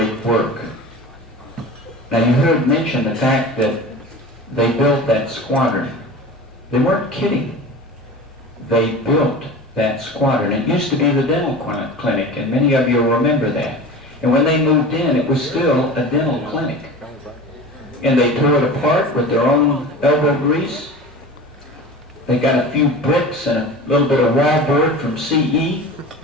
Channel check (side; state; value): both; normal; correlation 0.34